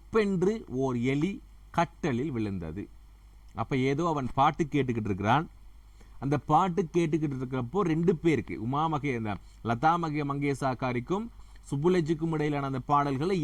ஓர் எலி கட்டலில் விழுந்தது. அப்ப ஏதோ அவன் பாட்டு கேட்டுக்கிட்டு இருக்கிறான். அந்த பாட்டு கேட்டுக்கிட்டு இருக்கிறப்போ 2 பேருக்கு, லதா மங்கேஷ்கருக்கும் சுப்புலட்சுக்கும் இடையிலான அந்த பாடல்களை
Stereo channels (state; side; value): identical; both; correlation 1.00